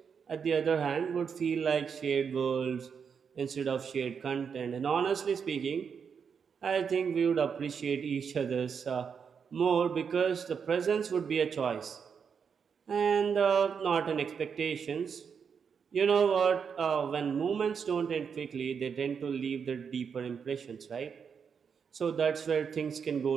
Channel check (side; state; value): left; quieter; 6.6 dB